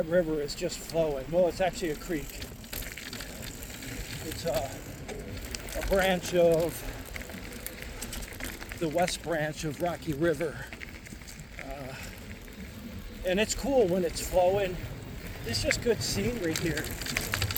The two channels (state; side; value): identical; both; correlation 1.00